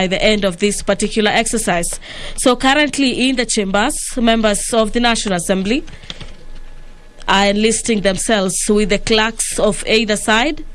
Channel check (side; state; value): both; identical; correlation 1.00